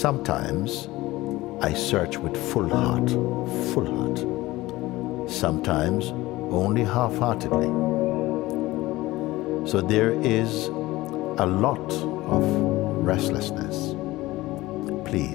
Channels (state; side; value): quieter; right; 18.6 dB